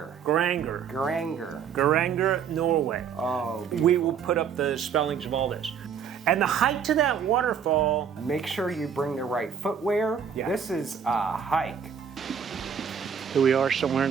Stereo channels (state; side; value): quieter; left; 7.4 dB